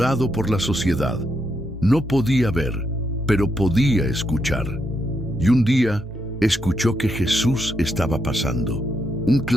por la sociedad. No podía ver, pero podía escuchar. Y un día escuchó que Jesús estaba pasando. Un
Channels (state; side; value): normal; both; correlation 0.80